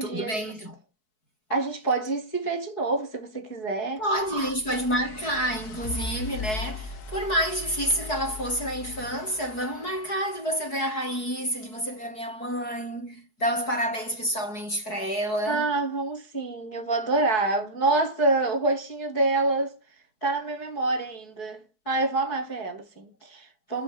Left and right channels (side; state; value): right; late; 4.7 ms